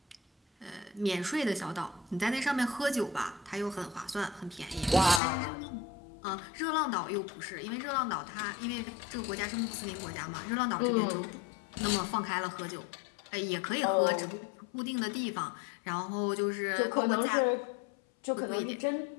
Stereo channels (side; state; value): right; drops out; at 5.2 s